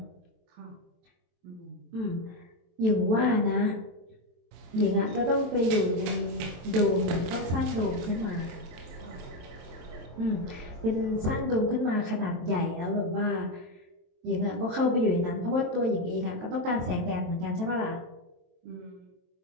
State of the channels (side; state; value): left; late; 23 ms